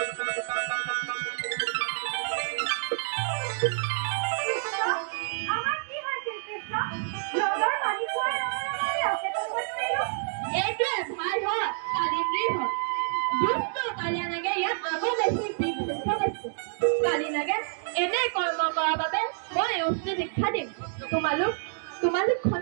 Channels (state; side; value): silent; left; digital silence